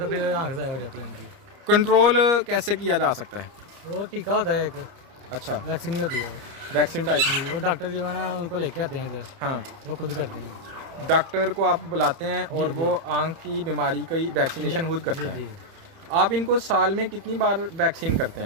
फिर आँख ज़ाया हो जाती है उनकी। कंट्रोल कैसे किया जा सकता है? वो टीका होता है एक, अच्छा, वैक्सीन ही होती है। Vaccine type. वो डॉक्टर जो है ना उनको लेके आते हैं इधर, हाँ, वो खुद करते हैं। डॉक्टर को आप बुलाते हैं और जी, वो आंख की बीमारी की वैक्सीनेशन खुद करते जी हैं। जी। आप इनको साल में कितनी बार वैक्सीन करते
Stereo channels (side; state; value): left; late; 31 ms